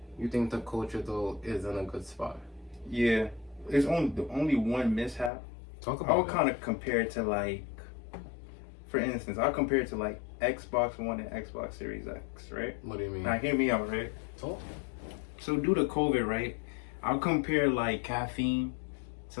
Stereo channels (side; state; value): right; drops out; at 5.3 s